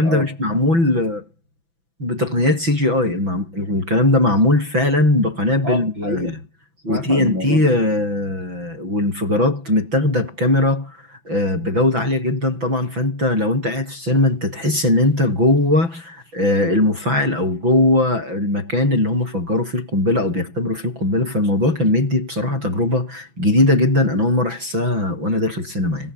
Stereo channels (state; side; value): late; left; 6.0 ms